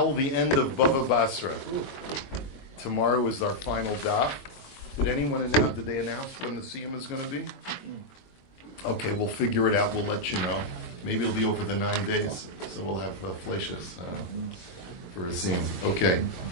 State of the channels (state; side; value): late; right; 22 ms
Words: the end of Bava Basra. Tomorrow is our final daf. Did they announce when the siyum is going to be? Okay, we'll figure it out. We'll let you know. Maybe it'll be over the 9 days, so we'll have flashes for a siyum. Okay.